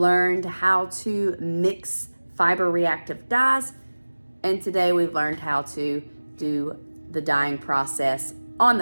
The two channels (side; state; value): both; inverted; correlation -1.00